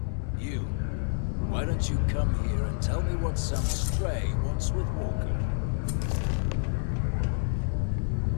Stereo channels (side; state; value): right; silent; 59 dB below the other